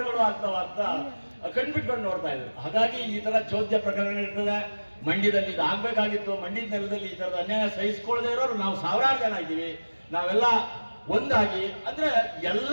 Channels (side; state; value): both; inverted; correlation -1.00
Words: ಆಗ್ತಾವ ಅಂತ ಕಣ್ಬಿಟ್ಕೊಂಡು ನೋಡ್ತಾ ಇದ್ರು. ಹಾಗಾಗಿ ಈ ತರ ಚೋದ್ಯ ಪ್ರಕರಣಗಳಿರ್ತದೆ. ಮಂಡ್ಯದಲ್ಲಿ ಇದು ಆಗ್ಬೇಕಾಗಿತ್ತು. ಮಂಡ್ಯದ ನೆಲದಲ್ಲಿ ಈ ತರದ ಅನ್ಯಾಯ ಸಹಿಸ್ಕೊಳ್ಳದೆ ಇರೋರು ನಾವು 1000 ಜನ ಇದ್ದೀವಿ. ನಾವೆಲ್ಲ ಒಂದಾಗಿ ಅಂದ್ರೆ